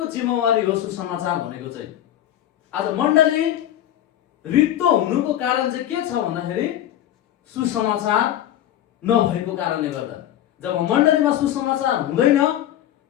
जिम्मेवारी हो सुसमाचार भनेको चाहिँ। आज मण्डली रित्तो हुनुको कारण चाहिँ के छ भन्दाखेरि सुसमाचार नभएको कारणले गर्दा। जब मण्डलीमा सुसमाचार हुँदैन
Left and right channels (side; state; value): right; quieter; 12.0 dB